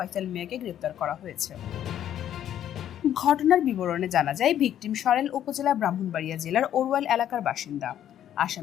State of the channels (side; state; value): right; quieter; 10.8 dB